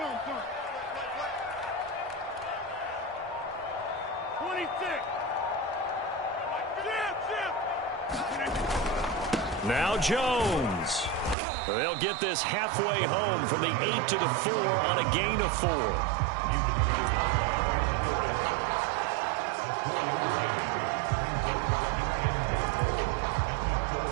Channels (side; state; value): left; drops out; at 11.4 s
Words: Now Jones. They'll get this halfway home from the 8 to the 4 on a gain of 4.